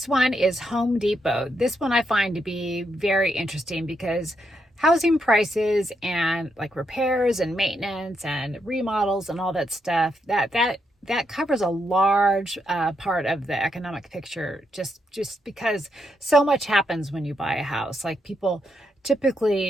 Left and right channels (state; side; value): normal; both; correlation 0.80